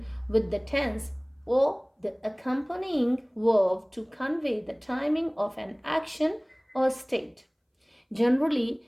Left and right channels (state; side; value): identical; both; correlation 1.00